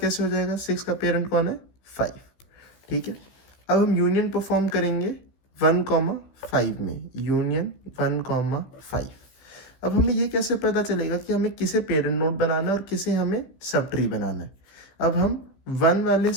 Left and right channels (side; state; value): right; late; 16 ms